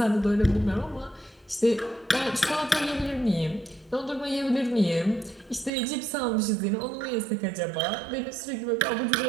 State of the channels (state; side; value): drops out; left; at 5.7 s